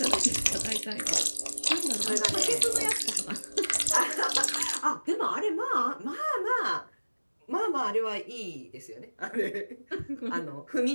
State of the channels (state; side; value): inverted; both; correlation -1.00